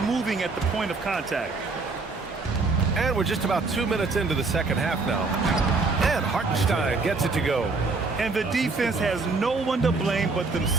moving at the point of contact. And we're just about 2 minutes into the second half now. And Hartenstein gets it to go. And the defense has no one to blame but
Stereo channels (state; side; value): quieter; left; 3.9 dB